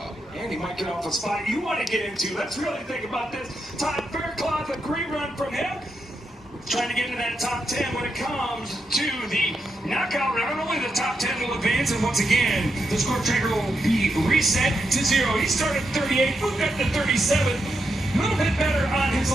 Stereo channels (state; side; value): normal; both; correlation 0.84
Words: And he might get off a spot you want to get into. Let's really think about this. Todd Fairclough, a great run from him. Trying to get into that top 10 when it comes to the knockout round. Only the top 10 will advance, and once again, the score tracker will be reset to 0. He started 38, moved up to 37. A little bit better on his